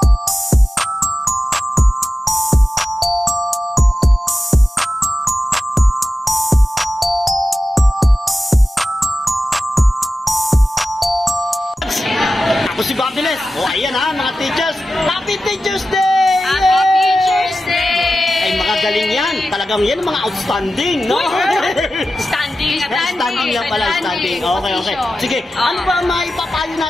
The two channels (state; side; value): normal; both; correlation 0.94